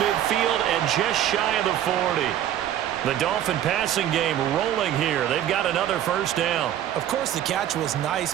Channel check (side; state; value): left; quieter; 11.3 dB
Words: and just shy of the 40. The Dolphin passing game rolling here. They've got another first down. Of course, the catch was nice,